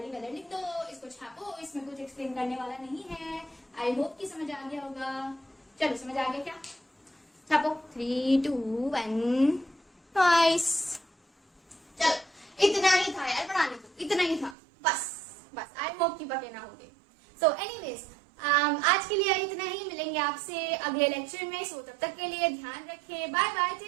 लिख दो, इसको छापो। इसमें कुछ एक्सप्लेन करने वाला नहीं है। आई होप कि समझ आ गया होगा। चलो, समझ आ गया क्या? छापो, 3, 2, 1, नाइस। चलो, इतना ही था यार पढ़ाने को, इतना ही था बस। आई होप कि बके ना होगे। सो एनीवेज, आज के लिए इतना ही। मिलेंगे आपसे अगले लेक्चर में। सो तब तक के लिए ध्यान रखें। Bye bye,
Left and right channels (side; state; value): left; drops out; at 14.6 s